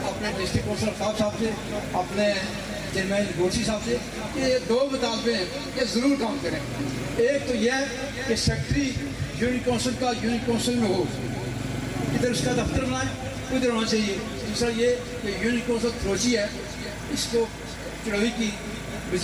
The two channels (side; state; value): both; identical; correlation 1.00